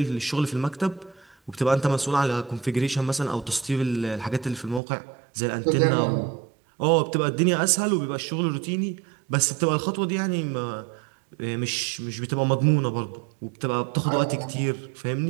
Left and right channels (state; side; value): drops out; left; at 4.8 s